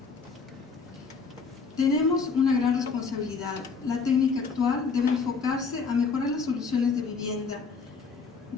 Tenemos una gran responsabilidad. La técnica actual debe enfocarse a mejorar las soluciones de vivienda.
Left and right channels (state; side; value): quieter; right; 5.0 dB